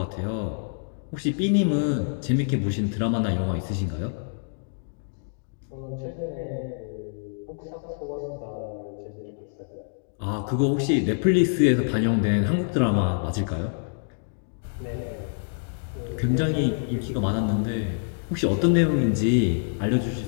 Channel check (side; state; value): right; silent; digital silence